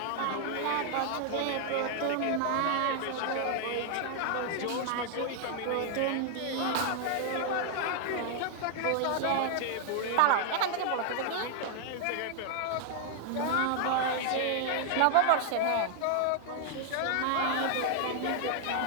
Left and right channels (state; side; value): different; both; correlation 0.00